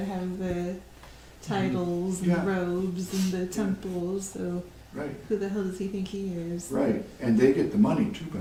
have the titles and Yeah. the robes and the temples. So Right, who the hell does he think he is? right. And they get the money too, by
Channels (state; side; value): identical; both; correlation 1.00